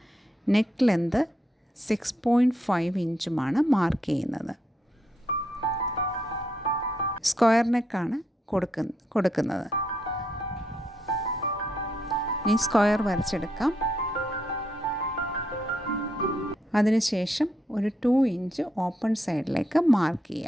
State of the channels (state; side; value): normal; both; correlation 0.78